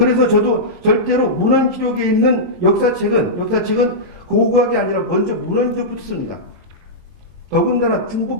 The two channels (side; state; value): left; late; 22 ms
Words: 저도 절대로 문헌 기록에 있는 역사책은 고고학이 아니라 먼저 문헌적으로 씁니다. 더군다나